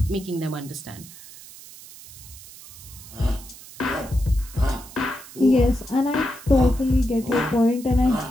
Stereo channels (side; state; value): right; noise; hiss, 18 dB below the sound